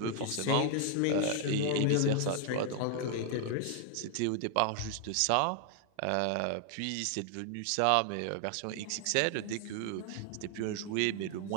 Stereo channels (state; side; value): different; both; correlation 0.00